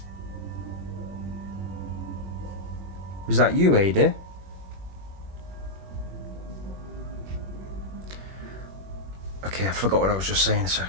Was that you, Ada? Okay, I forgot what I was just saying a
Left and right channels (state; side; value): late; left; 21 ms